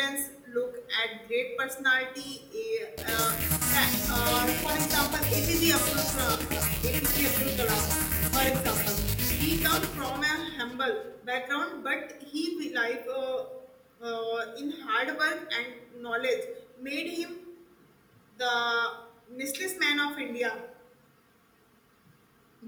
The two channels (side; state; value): both; identical; correlation 1.00